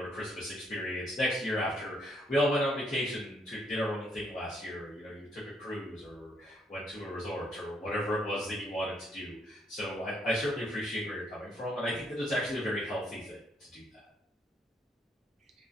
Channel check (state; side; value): normal; both; correlation 0.71